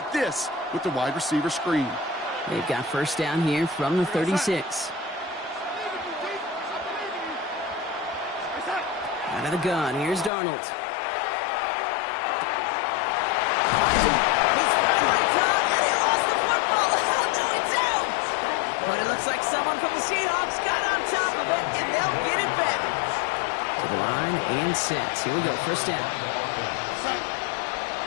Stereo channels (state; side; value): drops out; right; at 10.3 s